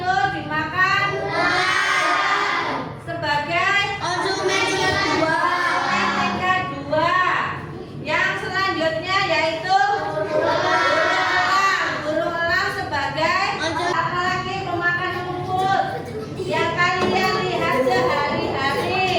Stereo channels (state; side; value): identical; both; correlation 1.00